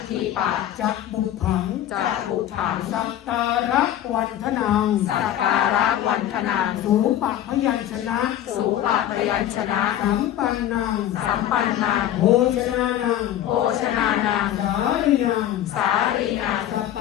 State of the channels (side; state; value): right; quieter; 11.8 dB